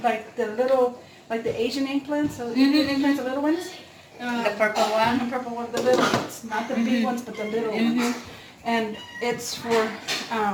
like the Asian eggplants, so Indian eggplants, the little ones. The purple one. The purple one, the little ones, not the big ones, but the little ones. And it's for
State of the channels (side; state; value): both; identical; correlation 1.00